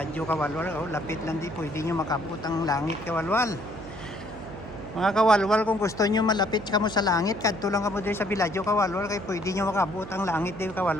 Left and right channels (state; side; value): noise; right; hum, 14 dB below the sound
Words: kawalwal, oh, lapit lang di pwede nyo makabot ang langit kawalwal. Mga kawalwal, kung gusto nyo malapit kamo sa langit, kadto lang kamo diri sa biladyo kawalwal, kay pwede nyo makabot ang langit diri